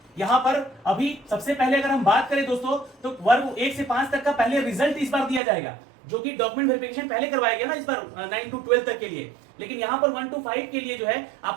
यहाँ पर अभी सबसे पहले अगर हम बात करें दोस्तों, तो वर्ग 1 से 5 तक का पहले रिजल्ट इस बार दिया जाएगा, जो कि डॉक्यूमेंट वेरिफिकेशन पहले करवाया गया ना इस बार 9 to 12 तक के लिए। लेकिन यहाँ पर 1 to 5 के लिए जो है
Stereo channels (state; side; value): drops out; left; at 5.4 s